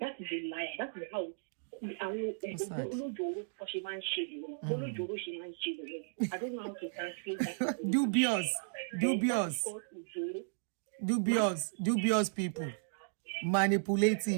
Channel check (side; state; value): left; silent; digital silence